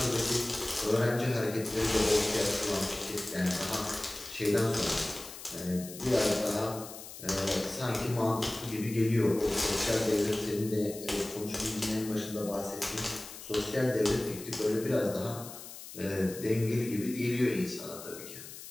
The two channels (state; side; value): noise; left; hiss, 13 dB below the sound